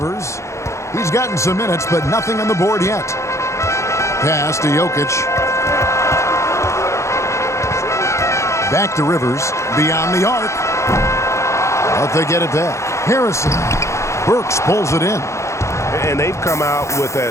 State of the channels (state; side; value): late; right; 0.14 ms